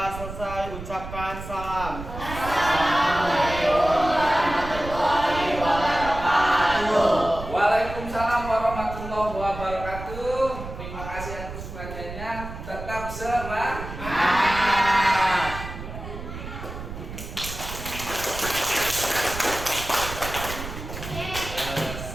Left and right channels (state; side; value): noise; right; rumble, 10 dB below the sound